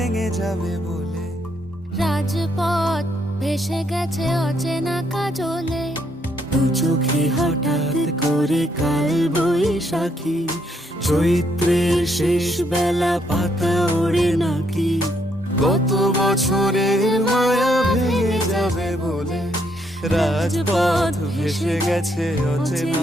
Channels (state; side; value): normal; both; correlation 0.73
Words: যাবে বলে, রাজপথ ভেসে গেছে অচেনা কাজলে। দু চোখে হঠাৎ করে কাল বৈশাখী, চৈত্রের শেষ বেলা পাতা ওড়ে নাকি, গত বছরের মায়া ভেঙে যাবে বলে, রাজপথ ভেসে গেছে